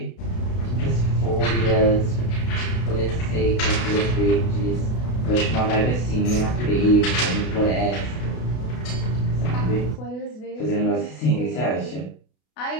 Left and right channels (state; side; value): late; right; 32 ms